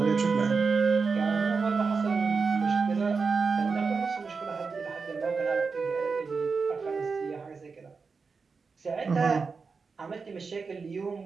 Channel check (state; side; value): quieter; left; 4.8 dB